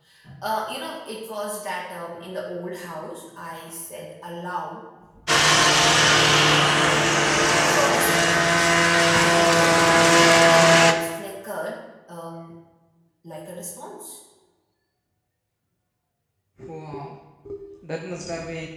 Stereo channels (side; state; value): both; identical; correlation 1.00